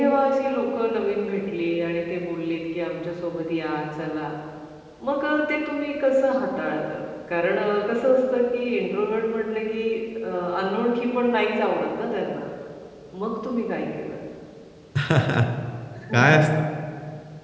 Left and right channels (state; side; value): identical; both; correlation 1.00